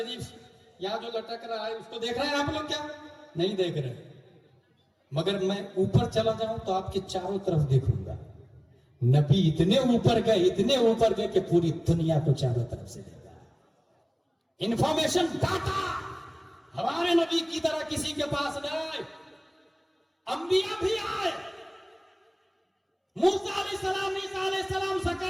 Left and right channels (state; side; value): identical; both; correlation 1.00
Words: یہاں جو لٹک رہا ہے اس کو دیکھ رہے ہیں آپ لوگ کیا؟ نہیں دیکھ رہے. مگر میں اوپر چلا جاؤں تو آپ کے چاروں طرف دیکھوں گا. نبی اتنے اوپر گئے کہ پوری دنیا کو چاروں طرف سے دیکھا. انفارمیشن ڈاٹا ہمارے نبی کی طرح کسی کے پاس نہ آئے. انبیاء بھی آئے, موسیٰ علیہ السلام, عیسیٰ علیہ السلام,